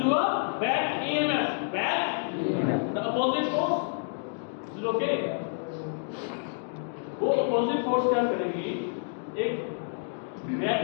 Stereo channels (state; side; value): silent; right; 59 dB below the other